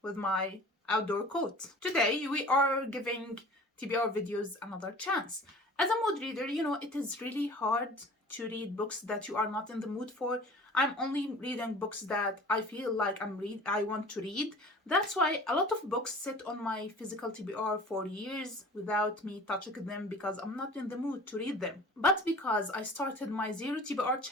with my outdoor coat. Today we are giving TBR videos another chance. As a mood reader, it is really hard to read books that you are not in the mood for. I'm only reading books that I feel like I want to read. That's why a lot of books sit on my physical TBR for years without me touching them because I'm not in the mood to read them. But because I started my Zero TBR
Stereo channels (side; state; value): both; normal; correlation 0.43